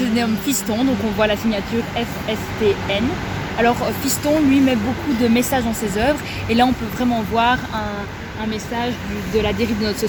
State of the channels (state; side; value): identical; both; correlation 1.00